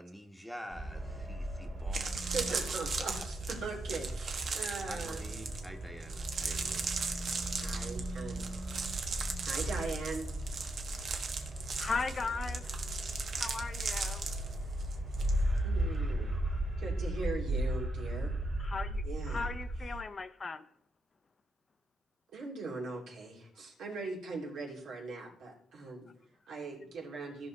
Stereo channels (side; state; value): both; normal; correlation 0.81